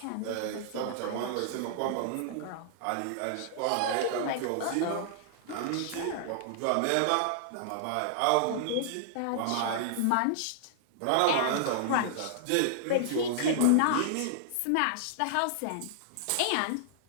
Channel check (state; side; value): different; both; correlation -0.01